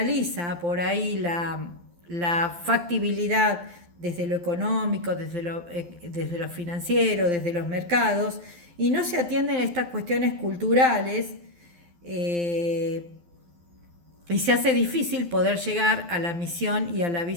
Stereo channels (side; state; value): left; late; 12 ms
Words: por ahí la factibilidad desde lo económico, desde lo financiero, desde los mercados, y no se atienden a estas cuestiones culturales, y se hace difícil poder llegar a la misión y a la